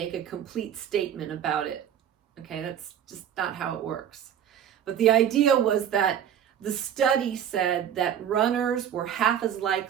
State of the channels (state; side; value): quieter; left; 9.5 dB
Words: a complete statement about it. Okay, that's just not how it works. But the idea was that the study said that runners were half as